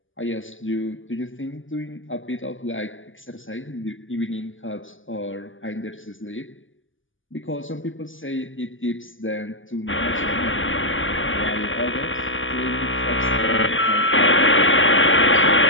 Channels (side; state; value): right; late; 0.57 ms